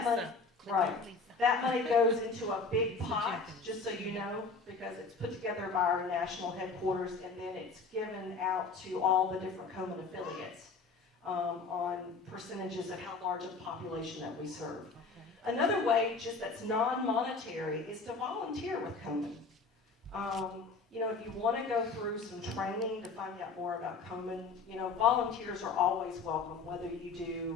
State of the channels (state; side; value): quieter; right; 4.4 dB